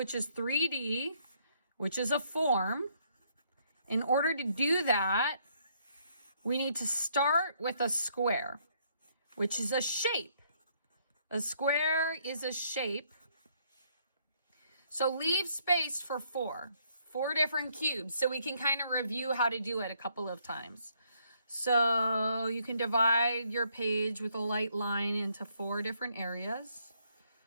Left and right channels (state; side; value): inverted; both; correlation -0.69